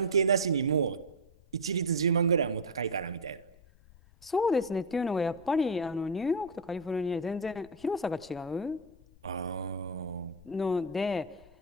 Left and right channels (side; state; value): left; noise; rumble, 25 dB below the sound